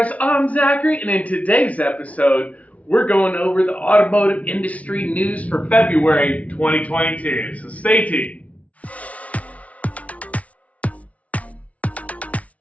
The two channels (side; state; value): right; late; 0.067 ms